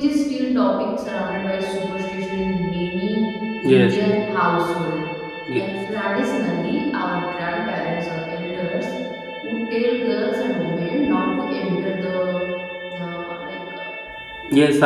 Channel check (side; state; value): both; identical; correlation 1.00